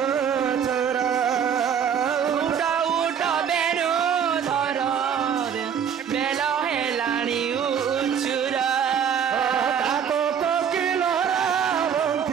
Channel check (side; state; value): left; quieter; 7.9 dB